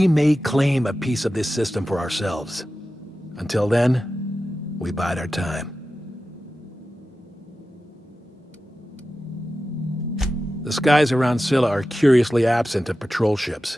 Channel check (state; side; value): normal; both; correlation 0.93